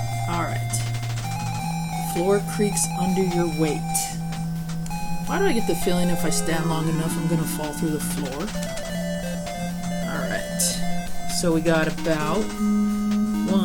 Alright. Floor creaks under your weight. Why do I get the feeling if I stand long enough I'm going to fall through the floor? Alright. So we got about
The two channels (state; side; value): identical; both; correlation 1.00